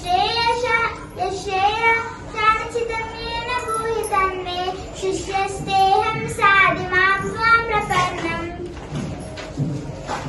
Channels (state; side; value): identical; both; correlation 1.00